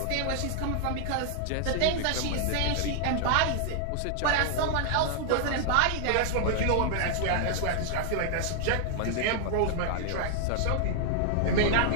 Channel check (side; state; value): both; different; correlation 0.00